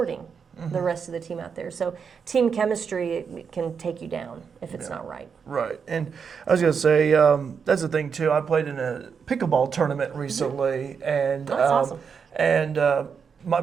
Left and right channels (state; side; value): quieter; left; 6.3 dB